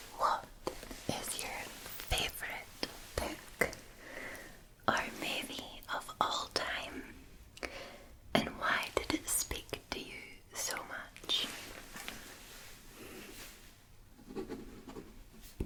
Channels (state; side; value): identical; both; correlation 1.00